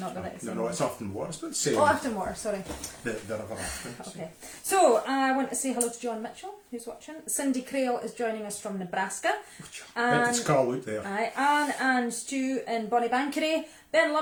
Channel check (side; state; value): both; identical; correlation 1.00